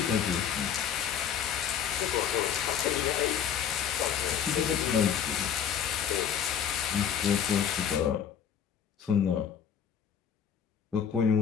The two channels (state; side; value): quieter; right; 8.4 dB